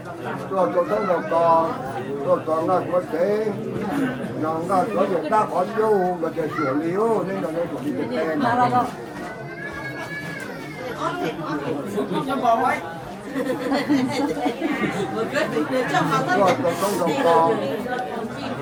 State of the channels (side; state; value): both; identical; correlation 1.00